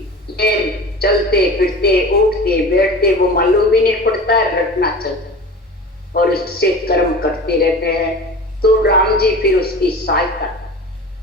ये चलते फिरते उठते बैठते वो मालूम भी नहीं पड़ता, रटना चलता और इससे कर्म करते रहते हैं। तो राम जी फिर उसकी सहायता।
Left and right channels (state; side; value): normal; both; correlation 0.36